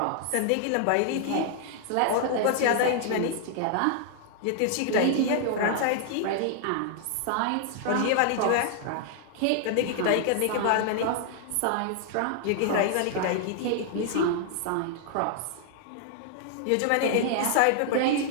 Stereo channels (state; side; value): different; both; correlation -0.01